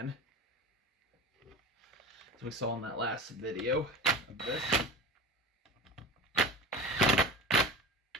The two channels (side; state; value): both; normal; correlation 0.31